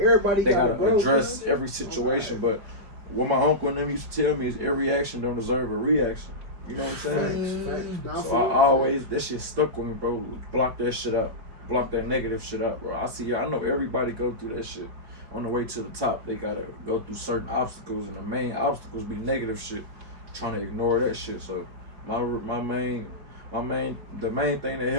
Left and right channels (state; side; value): late; left; 4.8 ms